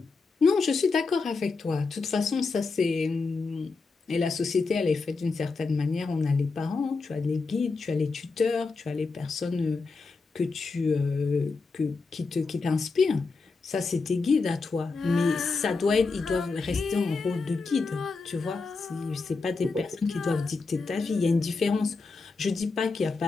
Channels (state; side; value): quieter; right; 4.2 dB